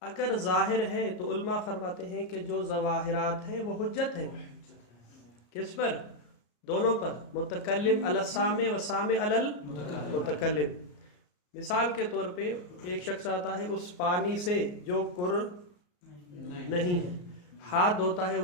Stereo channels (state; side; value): late; right; 33 ms